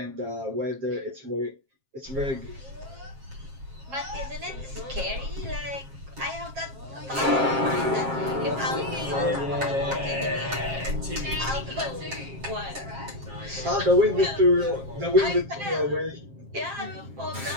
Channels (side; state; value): left; late; 7.4 ms